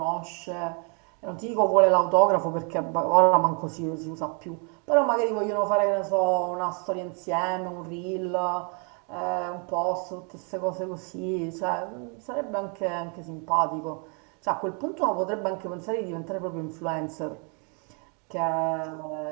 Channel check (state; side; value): quieter; left; 37.3 dB